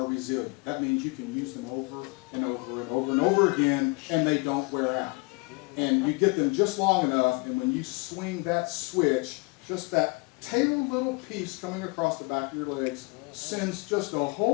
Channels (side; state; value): right; quieter; 28.5 dB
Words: resilient. That means you can use them over and over and over and over again, and they don't wear out. And you get them just long enough, and when you swing that switch, just that tail little piece coming across the back of your legs sends just a